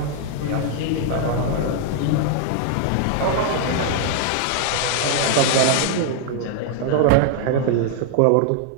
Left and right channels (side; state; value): both; different; correlation 0.00